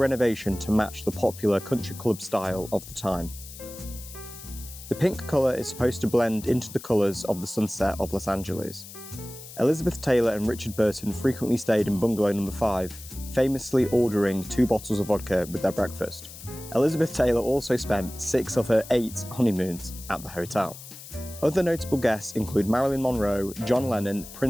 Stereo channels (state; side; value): noise; left; hiss, 15 dB below the sound